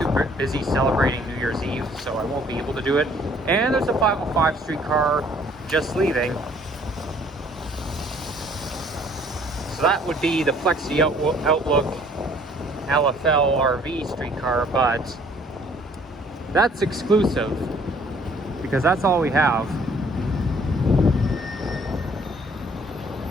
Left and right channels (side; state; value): both; normal; correlation 0.59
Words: busy celebrating New Year's Eve, so I won't be able to do it. And there's a 505 streetcar just leaving. So that would be the Flexi Outlook LFL RV streetcar, but that's exclusive because that's all we have.